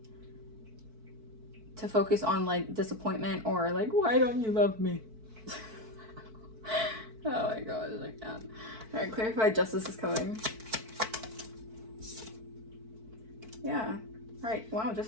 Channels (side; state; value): left; late; 4.5 ms